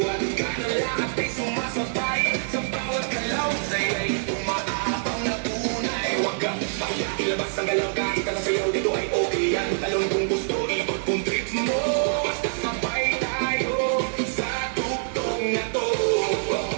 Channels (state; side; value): silent; left; digital silence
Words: kanan lahat ay sumasabay. Sa bawat galaw sa'yo'y umaabang na tunay. Huwag kang baya, ilabas ang galaw. Kahit ka na sayaw dito ay okay yan. Talon kung gusto, ikot kung trip mo. Basta sabay tayo sa tugtog na to.